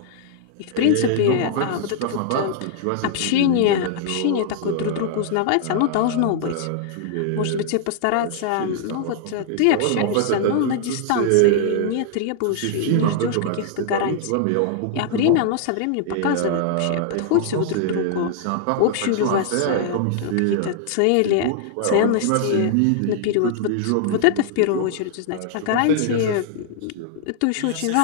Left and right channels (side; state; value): both; different; correlation -0.01